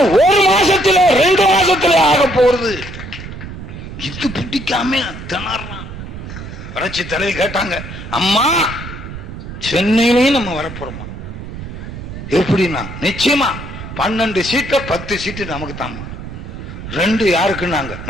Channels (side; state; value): right; noise; rumble, 10 dB below the sound